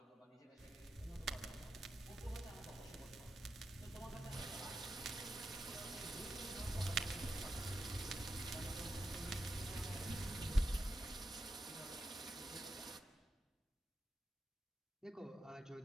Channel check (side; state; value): both; normal; correlation 0.88